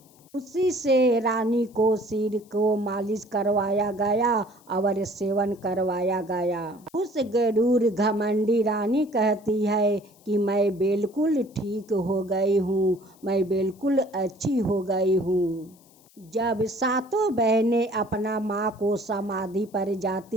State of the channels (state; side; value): noise; left; hiss, 29 dB below the sound